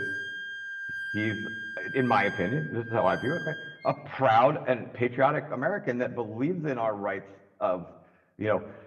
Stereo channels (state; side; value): identical; both; correlation 1.00